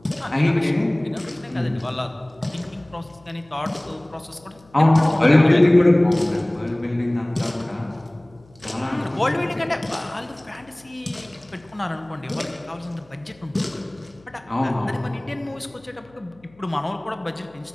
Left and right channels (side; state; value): left; noise; hum, 28 dB below the sound